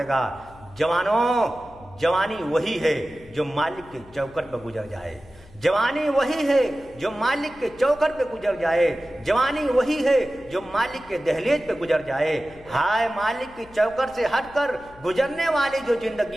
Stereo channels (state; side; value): noise; left; hum, 24 dB below the sound